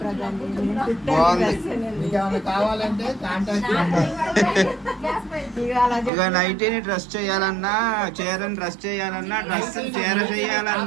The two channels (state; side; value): drops out; left; at 6.1 s